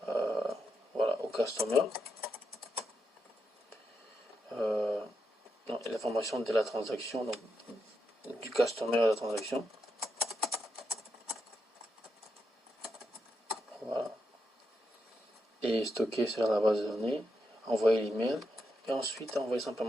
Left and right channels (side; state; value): both; normal; correlation 0.84